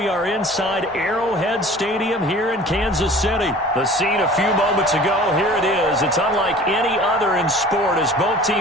are inside Arrowhead Stadium here in Kansas City. The scene a few moments ago, here it is. It's unlike any other in sport as both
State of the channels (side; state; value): both; normal; correlation 0.45